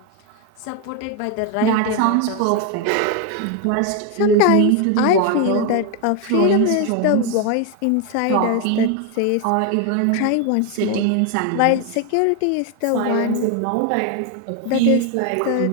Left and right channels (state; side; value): different; both; correlation 0.01